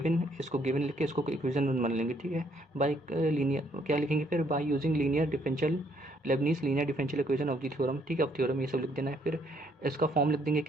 इसको गिवन लिख के इसको इक्वेशन मान लेंगे, ठीक है। बाय लीनियर क्या लिखेंगे फिर, by using linear differential Lebanese linear differential equation of the theorem, ठीक है। अब थ्योरम ये सब लिख देना है, फिर इसका फॉर्म लिख देंगे,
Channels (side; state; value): both; normal; correlation 0.68